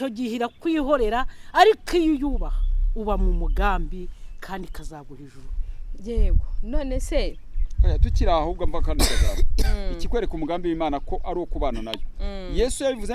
gihe irakwihorera, ariko iyo uyubaha uba mu mugambi kandi kazaguha ijuru. Yego. None se tukiri ahubwo mva kandi kazaba ikikwereka umugambi w'Imana ko ari ukubana nayo. Yesu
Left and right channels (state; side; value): identical; both; correlation 1.00